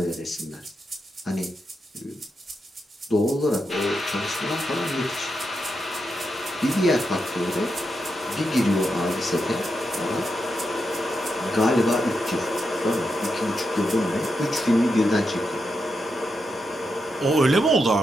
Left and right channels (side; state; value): both; normal; correlation 0.85